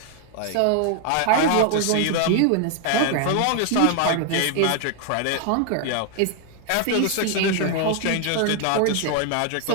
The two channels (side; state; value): both; different; correlation 0.00